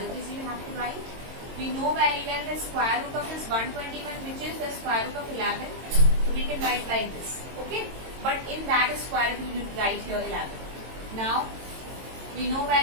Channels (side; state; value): left; late; 22 ms